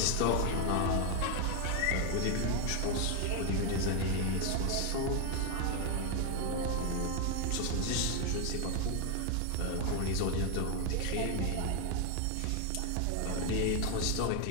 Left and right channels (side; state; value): both; different; correlation 0.01